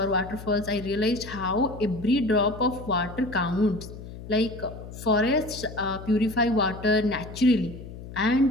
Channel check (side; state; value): left; noise; hum, 13 dB below the sound